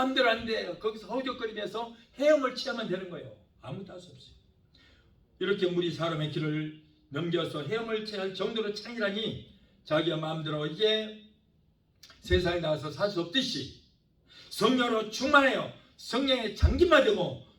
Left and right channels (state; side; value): identical; both; correlation 1.00